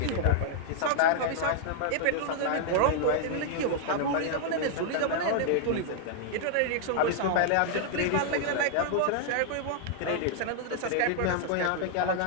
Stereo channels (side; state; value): both; different; correlation -0.01